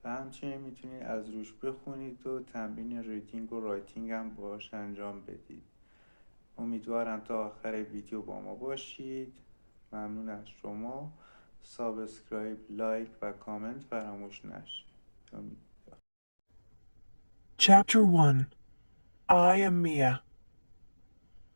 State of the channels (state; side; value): inverted; both; correlation -1.00